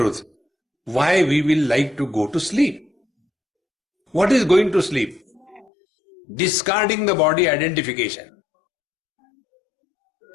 why we will like to go to sleep? What is going to sleep? Discarding the body identification.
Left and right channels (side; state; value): right; drops out; at 5.7 s